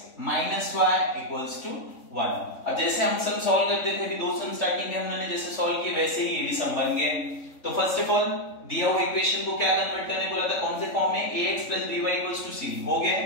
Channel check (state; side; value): late; right; 3.5 ms